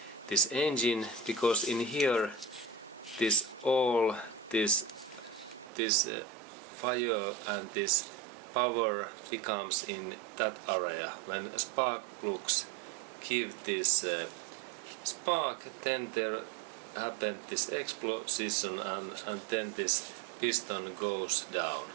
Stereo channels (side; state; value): left; drops out; at 5.7 s